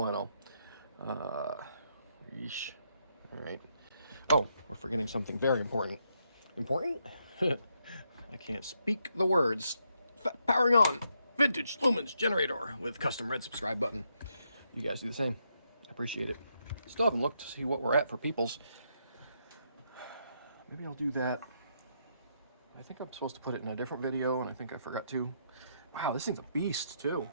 Yeesh. All right. Oh, we're forgetting something very important. Important? I can't speak the words. Powering on. Vintage lumens generator with custom red subscribe button. You guys do the same. I appreciate it. Still haven't looked to see what we're at for peoples. Maybe I'll do that. I think I'm supposed to put it in a different video, and I think I forgot to. Wow, this thing's a beast, too.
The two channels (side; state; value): both; inverted; correlation -0.78